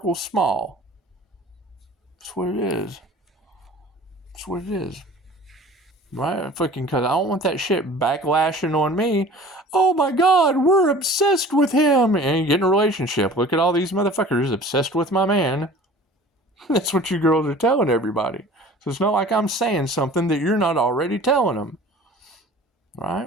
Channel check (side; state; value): both; normal; correlation 0.44